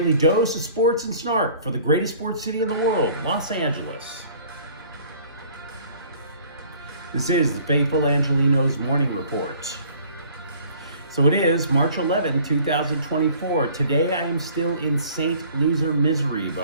dose of sports and snark for the greatest sports city in the world, Los Angeles. This is the faithful Angelenos Morning Report. So it is March 11, 2024. Today I am still in St. Loser misery, but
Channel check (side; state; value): both; inverted; correlation -0.53